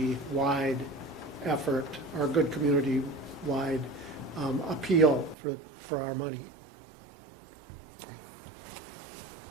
effort or a good community-wide appeal for our money.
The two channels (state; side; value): drops out; left; at 5.4 s